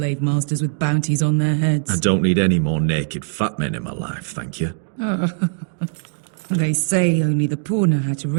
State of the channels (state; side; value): silent; left; digital silence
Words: masters with bounties on their heads. I don't need any more naked fat men in my life, thank you. They say only the poor know how to